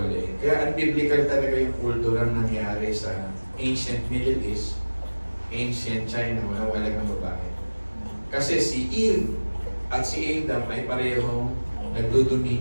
Kaya unbiblical talaga yung kulturang nangyari sa ancient Middle East, ancient China, walang ng babae. Kasi si Eve at si Adam ay parehong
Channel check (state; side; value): inverted; both; correlation -1.00